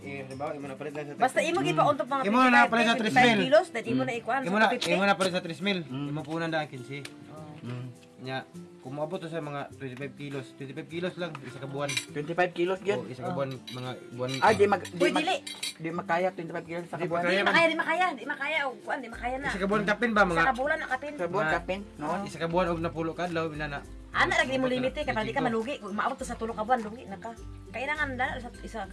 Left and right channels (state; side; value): identical; both; correlation 1.00